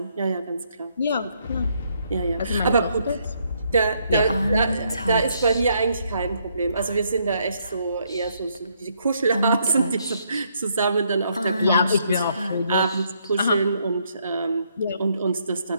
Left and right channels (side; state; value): both; inverted; correlation -0.72